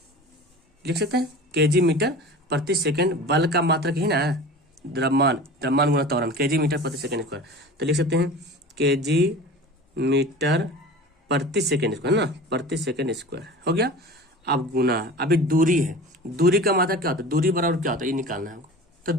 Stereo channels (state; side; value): normal; both; correlation 0.37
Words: लिख सकते हैं केजी मीटर प्रति सेकंड, बल का मात्रक ही ना द्रव्यमान, द्रव्यमान गुना त्वरण, केजी मीटर प्रति सेकंड स्क्वायर। तो लिख सकते हैं केजी मीटर प्रति सेकंड स्क्वायर ना, प्रति सेकंड स्क्वायर हो गया। अब गुना, अभी दूरी है, दूरी का मात्रक क्या होता है, दूरी बराबर क्या होता है, ये निकालना है हमको। तो